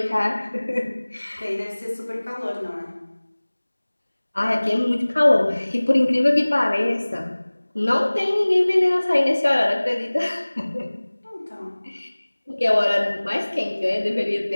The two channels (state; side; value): inverted; both; correlation -1.00